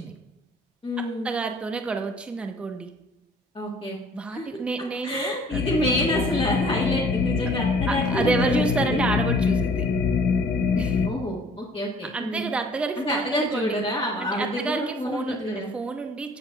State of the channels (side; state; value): both; normal; correlation 0.54